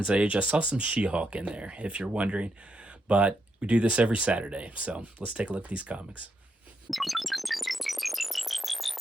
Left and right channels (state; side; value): normal; both; correlation 0.81